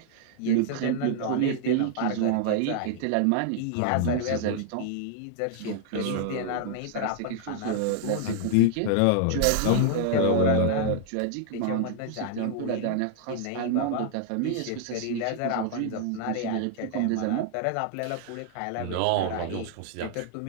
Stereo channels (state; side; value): different; both; correlation -0.01